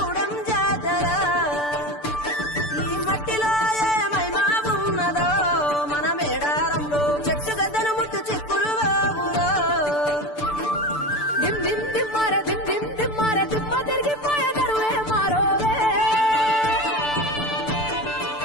జాతర ఈ మట్టిలో ఏ మహిమా ఉన్నదో మన మేడారంలో చెట్టు గద్దను ముట్టు చిక్కులు బాబులో దిమ్ దిమ్ దిమ్మార దిమ్ దిమ్ దిమ్మార దిమ్మ తిరిగిపోయే దరువే మారోవే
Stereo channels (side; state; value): right; late; 6.8 ms